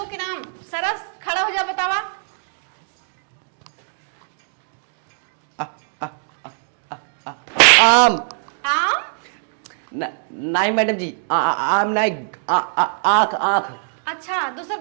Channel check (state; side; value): silent; left; digital silence